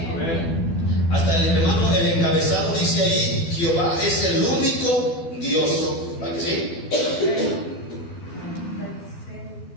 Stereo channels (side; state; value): right; late; 12 ms